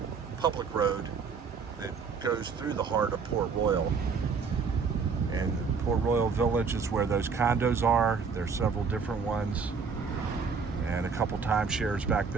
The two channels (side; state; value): left; quieter; 5.5 dB